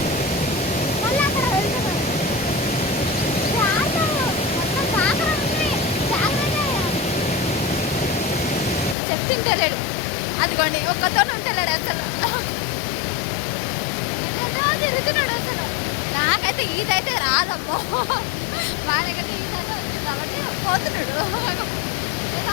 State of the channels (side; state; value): right; drops out; at 9.0 s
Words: మళ్ళీ అక్కడ వెళ్తున్నాడు. మొత్తం కాకర ఉంది. చెప్పింటలేడు. అదిగోండి ఒక్కతో ఉంటలేడు అసలు. తిరుగుతున్నాడు అసలు. నాకైతే ఈత అయితే రాదమ్మో. వాళ్ళకైతే ఈత అయితే వచ్చింది కాబట్టి పోతున్నాడు. ఎలా